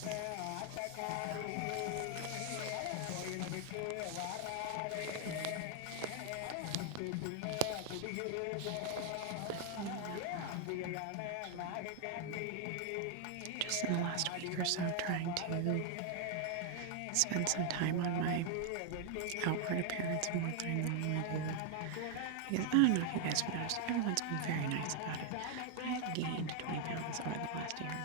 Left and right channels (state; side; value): different; both; correlation 0.00